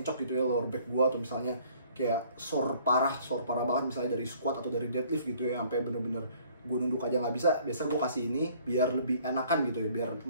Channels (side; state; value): both; inverted; correlation -0.58